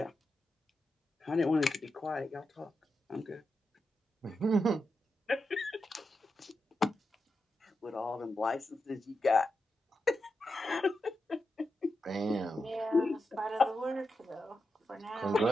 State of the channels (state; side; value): normal; both; correlation 0.88